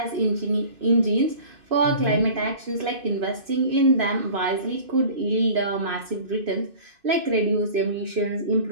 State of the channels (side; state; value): left; late; 2.6 ms